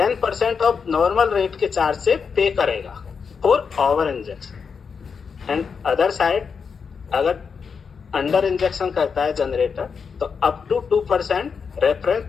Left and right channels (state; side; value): quieter; right; 5.9 dB